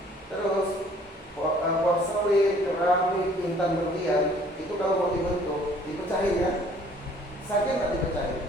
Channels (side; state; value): both; normal; correlation 0.57